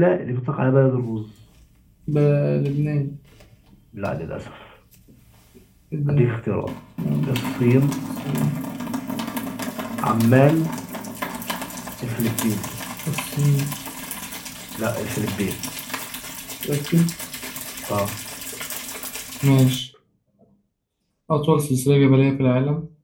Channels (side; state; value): both; identical; correlation 1.00